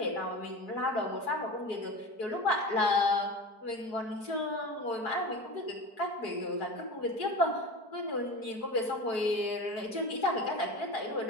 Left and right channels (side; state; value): right; late; 4.6 ms